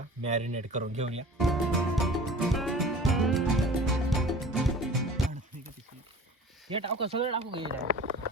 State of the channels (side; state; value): both; normal; correlation 0.42